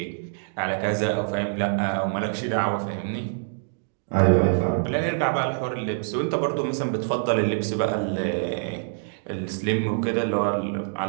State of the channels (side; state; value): left; silent; digital silence